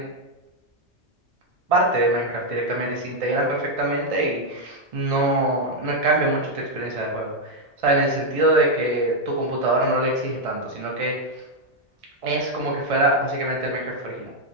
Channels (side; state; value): both; normal; correlation 0.01